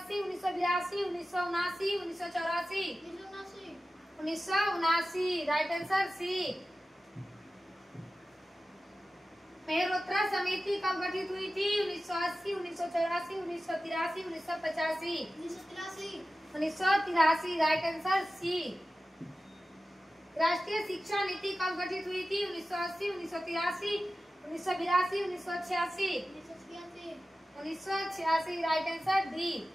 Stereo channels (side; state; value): both; normal; correlation 0.95